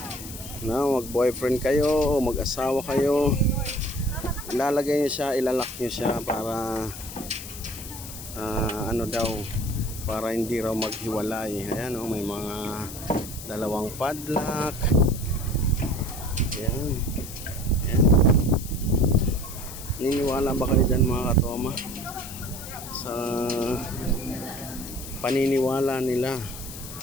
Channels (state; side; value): noise; left; hiss, 12 dB below the sound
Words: na mag-boyfriend kayo o mag-asawa kayo. Ilalagay niyo siya, ilalak niyo siya para ano daw, para hindi raw maghiwalay. Ayan o, may mga dalawang padlock. Ayan. Ayan. Niniwala ba kayo dyan mga katoma sa paniniwala nila